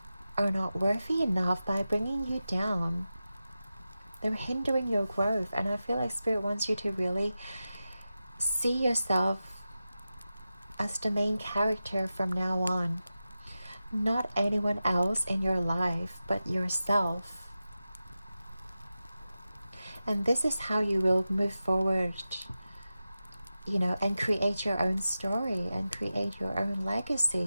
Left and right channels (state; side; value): inverted; both; correlation -0.93